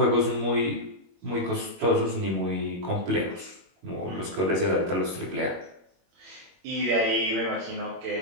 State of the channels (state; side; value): late; left; 21 ms